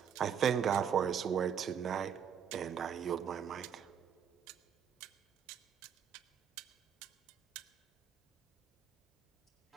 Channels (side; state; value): left; quieter; 7.7 dB